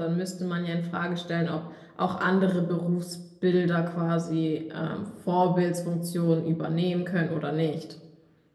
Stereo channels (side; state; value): both; identical; correlation 1.00